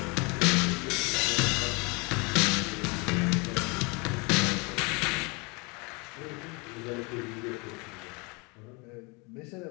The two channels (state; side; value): quieter; right; 29.1 dB